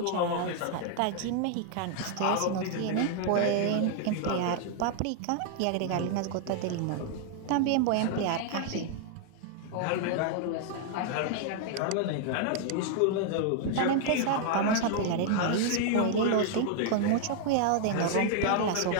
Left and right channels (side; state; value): both; different; correlation 0.00